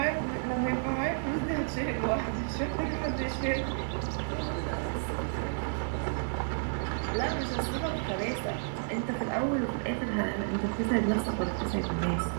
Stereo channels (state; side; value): silent; left; digital silence